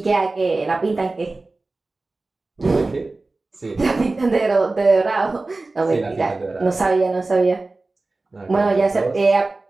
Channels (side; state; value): left; quieter; 3.3 dB